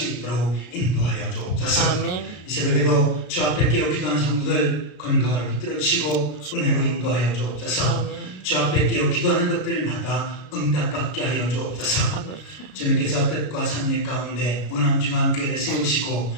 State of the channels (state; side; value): late; right; 33 ms